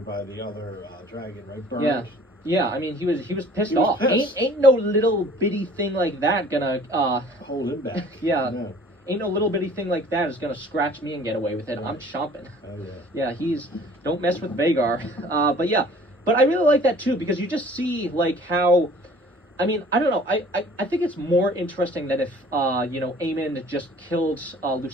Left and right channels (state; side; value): normal; both; correlation 0.51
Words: by the other dragon, right? Burned. Yeah. I mean, he was pissed off. Pissed. Ain't no little bitty thing like that gonna hold him back. Yeah. No. Ain't no little bitty thing like that is gonna scratch me and get away with it. Right. I'm chomping. Oh yeah. Yeah, don't mess with Vhagar. But yeah. but I really like that too because you just see like how. I mean, I don't know. I think it's more interesting than if Aemon just killed